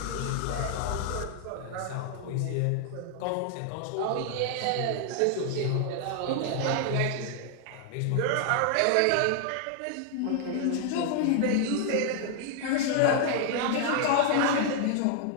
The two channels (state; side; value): different; both; correlation 0.00